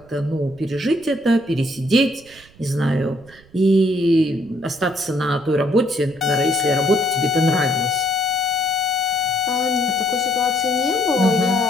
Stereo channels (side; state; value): right; noise; rumble, 26 dB below the sound